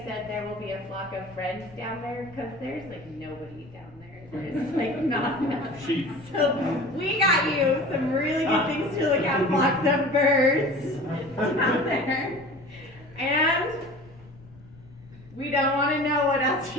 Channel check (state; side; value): noise; left; rumble, 23 dB below the sound